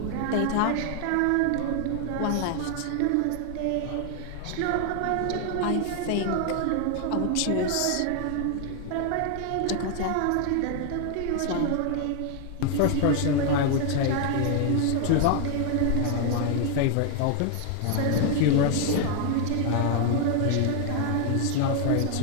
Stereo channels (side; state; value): both; different; correlation 0.00